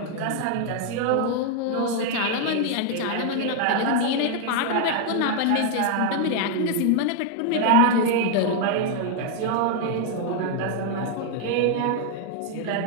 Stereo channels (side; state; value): both; different; correlation 0.00